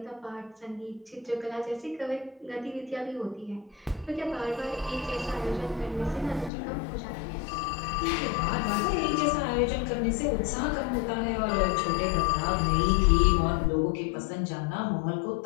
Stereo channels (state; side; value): drops out; right; at 6.5 s